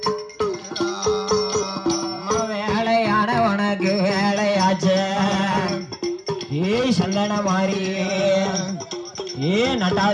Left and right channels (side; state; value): both; identical; correlation 1.00